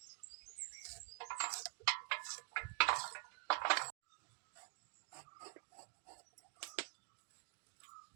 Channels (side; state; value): left; silent; digital silence